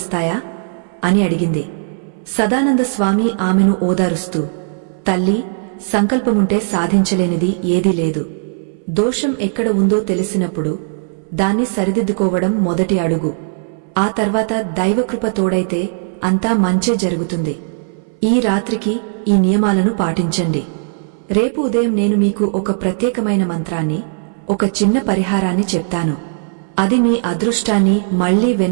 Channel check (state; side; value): silent; left; 63 dB below the other